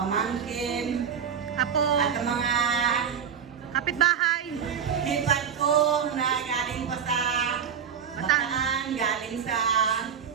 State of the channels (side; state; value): left; quieter; 7.7 dB